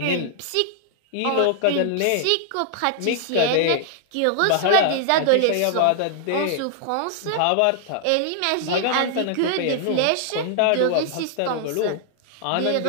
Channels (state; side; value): different; both; correlation -0.01